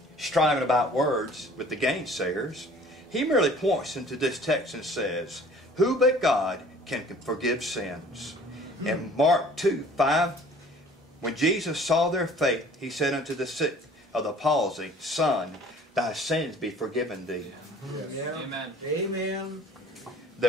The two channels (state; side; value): normal; both; correlation 0.50